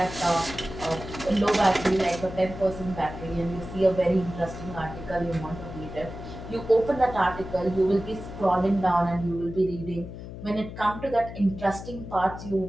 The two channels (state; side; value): noise; left; hum, 11 dB below the sound